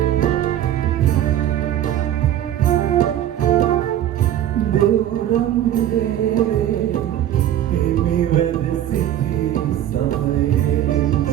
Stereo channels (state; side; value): quieter; left; 11.7 dB